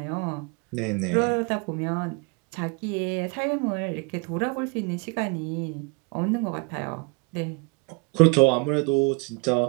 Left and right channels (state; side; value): quieter; left; 31.1 dB